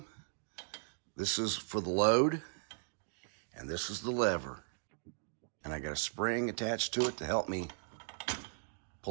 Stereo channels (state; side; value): silent; left; digital silence